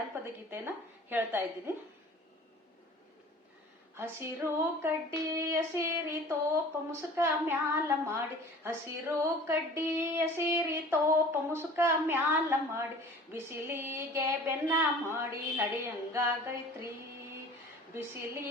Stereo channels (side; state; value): both; normal; correlation 0.44